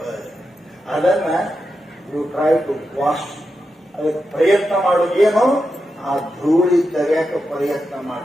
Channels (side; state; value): both; normal; correlation 0.88